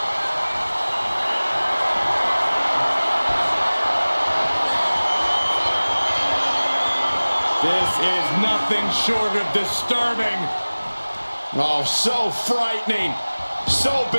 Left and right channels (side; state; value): both; inverted; correlation -1.00